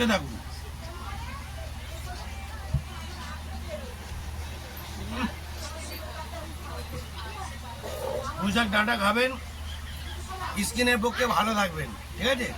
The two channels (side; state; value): both; identical; correlation 1.00